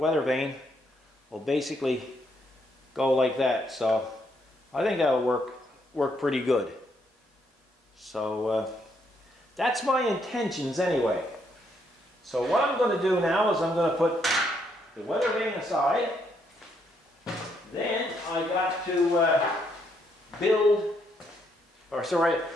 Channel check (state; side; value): normal; both; correlation 0.74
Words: vane will basically go like that. So I think that'll work pretty good. So that's my intentions anyway. So what I'm going to do now is I'm going to put the weather vane aside. Then I got to